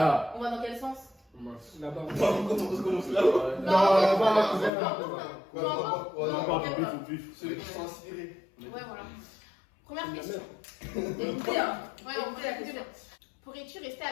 on va dans quel sens? Là-bas. On commence là. Ceux qui sont inspirés. Ouais, voilà. Première question. Ouais, on va la question. Pourrais-tu rester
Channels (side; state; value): right; drops out; at 4.7 s